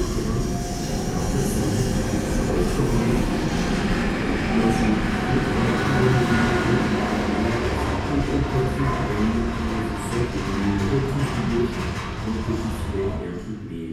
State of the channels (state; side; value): identical; both; correlation 1.00